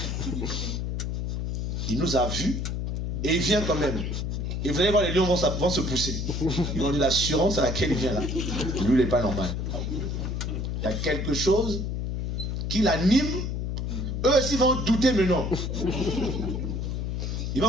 Il nous a vus, et il vient quand même. Et vous allez voir, les lions vont se pousser. Ils vont dire l'assurance à laquelle il vient là. Lui, il n'est pas normal. Il y a quelque chose qui l'anime. Eux aussi vont douter, mais non. Ils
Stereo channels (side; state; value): left; noise; hum, 2 dB below the sound